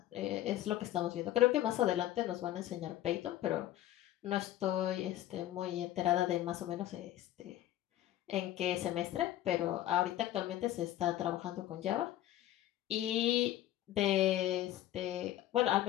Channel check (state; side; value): quieter; right; 13.6 dB